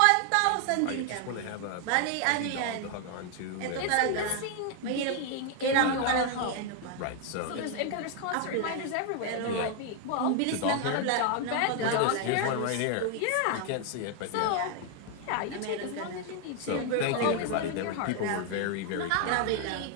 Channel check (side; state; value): both; different; correlation 0.00